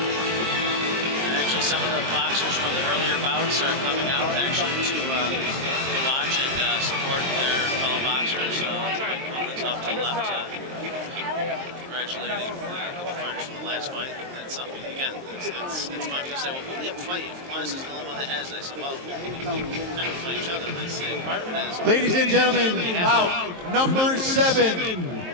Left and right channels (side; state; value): left; late; 23 ms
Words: And actually, some of the boxers from the earlier bouts are coming out actually to watch and support their fellow boxers. Mike Quinlan's off to the left. Congratulating the fighters from the last fight. That's something, again, it's fun. People say, well, who do you have to fight if Aquinas is the only one that has it? I said, well, we kind of fight each other. And I say, part of it is. Ladies and gentlemen, bout number 7,